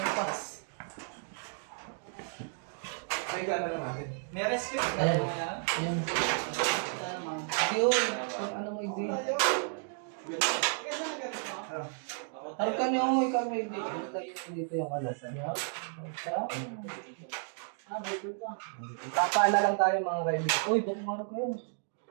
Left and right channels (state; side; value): silent; left; 56 dB below the other